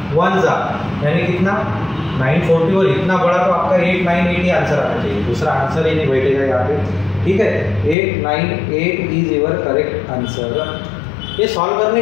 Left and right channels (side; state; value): right; drops out; at 8.0 s